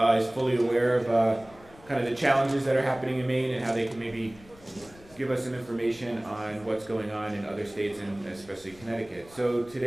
is fully aware of kind of the challenges that are happening in Maine and how they can maybe give us some information on what's going on in other states and especially Connecticut. So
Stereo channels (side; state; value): left; noise; rumble, 24 dB below the sound